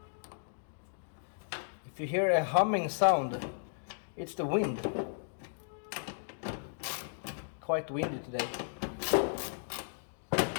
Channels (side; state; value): right; silent; digital silence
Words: If you hear a humming sound, it's the wind. Quite windy today.